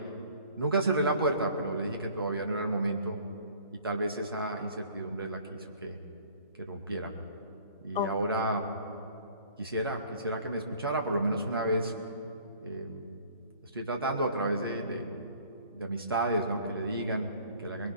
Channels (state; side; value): inverted; both; correlation -0.53